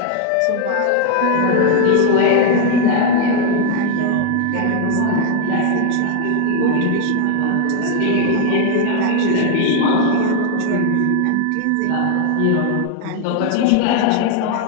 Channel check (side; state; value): both; different; correlation 0.00